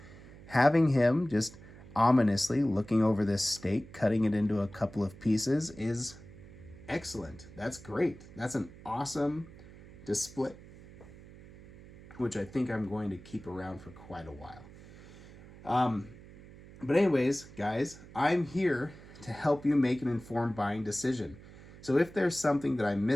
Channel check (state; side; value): noise; right; hum, 19 dB below the sound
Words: Having him just ominously looking over this steak, cutting it into a couple of pieces, is excellent. That's great. That's an awesome display, which I think I'm going to keep around for quite a while. But anyways, guys, I'm here to help you make an informed buying decision. So if there's something that I